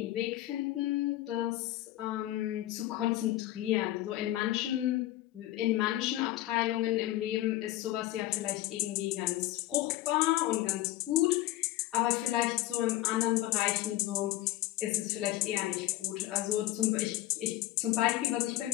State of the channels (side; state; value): right; quieter; 15.6 dB